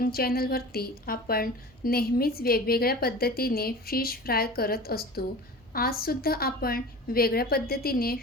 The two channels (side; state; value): both; normal; correlation 0.37